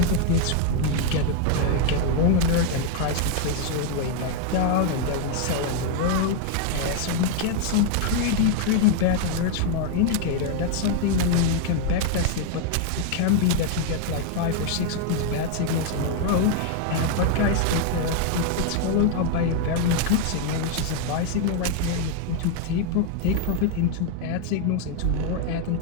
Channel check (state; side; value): different; both; correlation 0.00